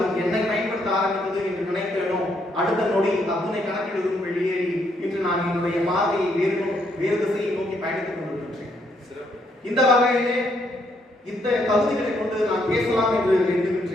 என்னை பயன்படுத்த ஆரம்பித்தது என்று நினைத்தேனோ அடுத்த நொடி அத்தனை கணக்கிலிருந்து வெளியேறி இன்று நான் என்னுடைய பார்வையை வேறு திசையை நோக்கி பயணித்துக் கொண்டிருக்கின்றேன். இந்த வகையிலே இந்த தகுதிகளை கொண்டு நான் பேசலாம் என்று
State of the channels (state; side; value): normal; both; correlation 0.73